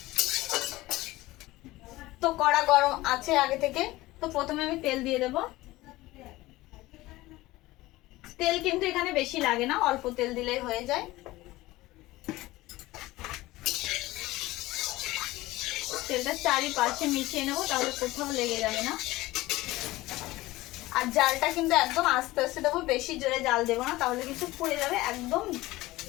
তো কড়া গরম আছে আগে থেকে। তো প্রথমে আমি তেল দিয়ে দেব। তেল কিন্তু এখানে বেশি লাগে না, অল্প তেল দিলেই হয়ে যায়। তেলটা চারিপাশে মিশিয়ে নেবো, তাহলে কোথাও লেগে যাবে না। আর জালটা কিন্তু একদম আস্তে আস্তে দেবো, বেশি জোরে জাল দেবো না, তাহলে কিন্তু পুড়ে যাবে একদম।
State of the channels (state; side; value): quieter; right; 18.5 dB